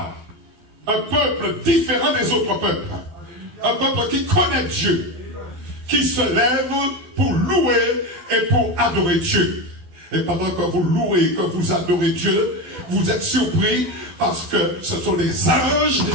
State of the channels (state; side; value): late; left; 12 ms